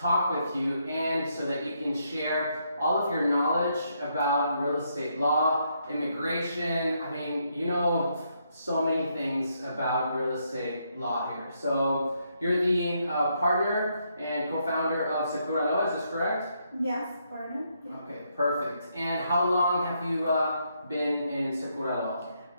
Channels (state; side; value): inverted; both; correlation -0.76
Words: with you and so that you can share all of your knowledge about real estate law, immigration. I mean, you know so many things about real estate law here. So you're the partner and co-founder of Sekuralaw, is this correct? Yes, partner. Okay, perfect. And how long have you been in Sekuralaw?